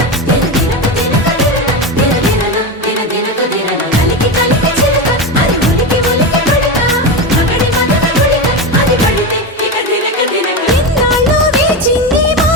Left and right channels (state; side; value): normal; both; correlation 0.17